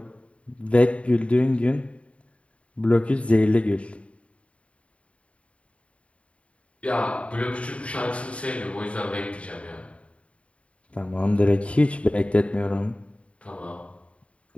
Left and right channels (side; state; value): right; late; 0.063 ms